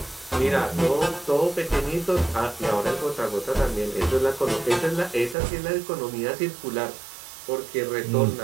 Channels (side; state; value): left; drops out; at 5.4 s